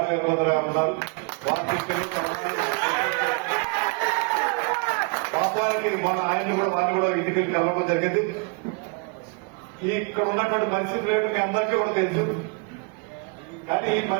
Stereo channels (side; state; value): left; quieter; 33.8 dB